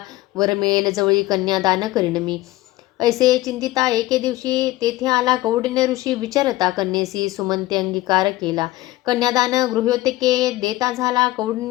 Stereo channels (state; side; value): quieter; right; 17.4 dB